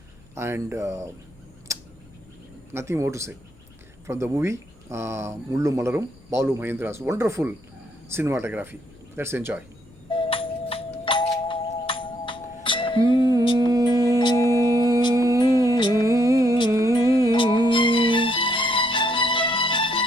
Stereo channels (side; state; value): left; noise; rumble, 27 dB below the sound